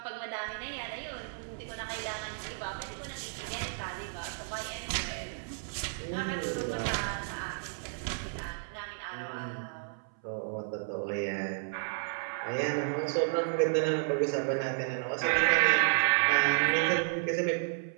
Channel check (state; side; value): silent; left; 56 dB below the other